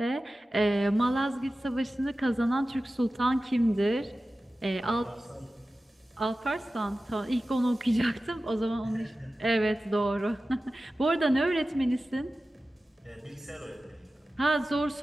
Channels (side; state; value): both; normal; correlation 0.95